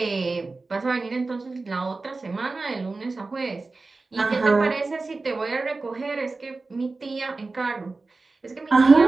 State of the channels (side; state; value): left; quieter; 3.6 dB